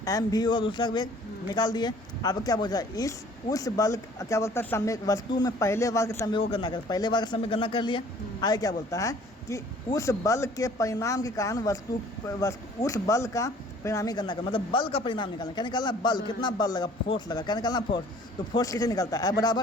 एम भी और दूसरा वेग निकाल दिए। अब क्या बोलता है, उस बल क्या बोलता है, संवेग वस्तु में पहले बार के संवेग को गणना कर, पहले बार का संवेग गणना कर लिया। आगे क्या बोलता है कि उस बल के परिणाम के कारण वस्तु उस बल का परिणामी गणना कर, मतलब बल का परिणाम निकालना, क्या निकालना, बल, कितना बल लगा, फोर्स लगा, क्या निकालना, फोर्स। तो फोर्स कैसे निकलता है,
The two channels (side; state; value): both; normal; correlation 0.53